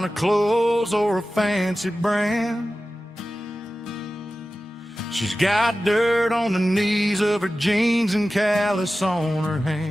clothes or a fancy brand. She's got dirt on the knees of her jeans and callus on her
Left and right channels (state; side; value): normal; both; correlation 0.95